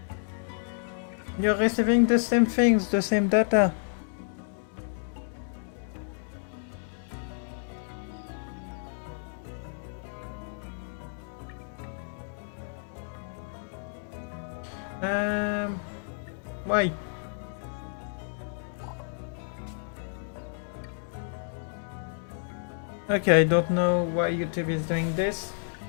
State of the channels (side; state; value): right; silent; 58 dB below the other